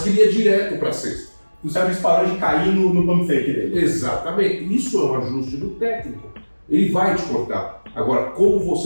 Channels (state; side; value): inverted; both; correlation -1.00